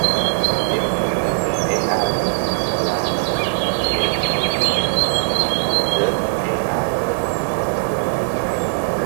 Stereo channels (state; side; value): silent; left; 66 dB below the other